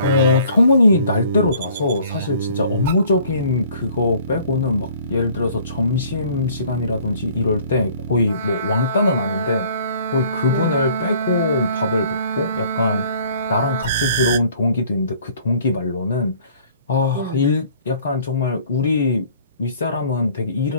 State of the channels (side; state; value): both; inverted; correlation -0.55